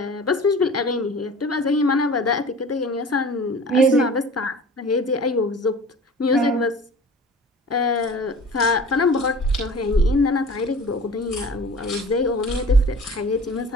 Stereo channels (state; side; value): normal; both; correlation 0.42